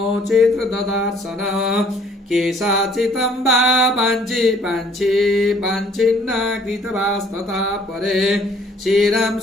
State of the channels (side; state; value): both; normal; correlation 0.59